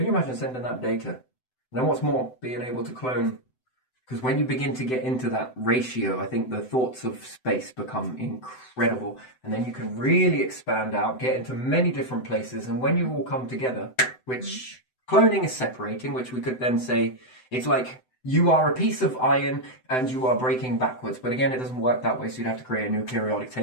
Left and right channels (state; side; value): late; right; 7.9 ms